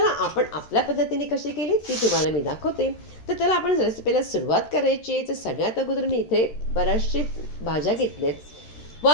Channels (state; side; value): late; right; 13 ms